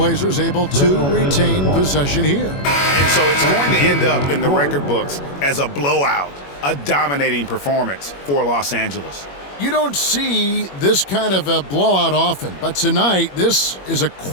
able to retain possession here. And so it's going to end up in the record books as a blowout, a dominating performance for Los Angeles. You don't see this kind of a blowout often, but tonight this is a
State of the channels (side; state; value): right; late; 21 ms